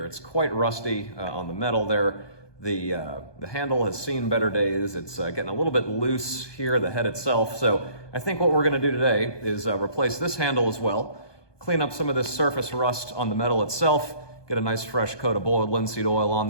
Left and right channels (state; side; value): late; right; 1.2 ms